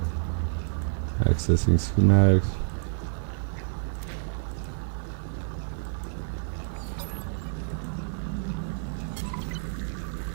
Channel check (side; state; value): left; silent; digital silence